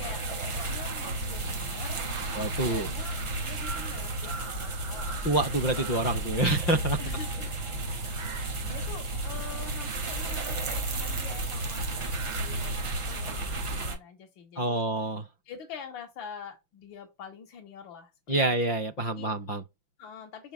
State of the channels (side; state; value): right; late; 5.9 ms